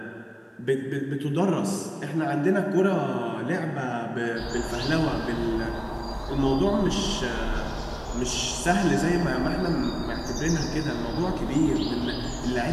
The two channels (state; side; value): identical; both; correlation 1.00